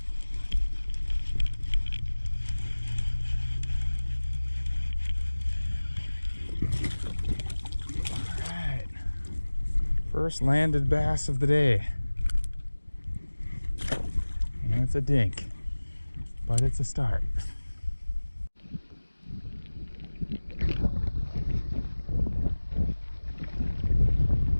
First landed bass of the day. And it's a dink, but it's a start.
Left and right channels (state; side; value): inverted; both; correlation -1.00